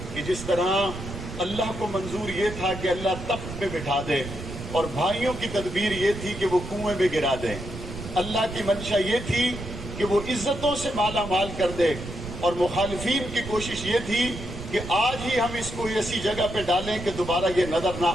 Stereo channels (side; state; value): right; noise; rumble, 10 dB below the sound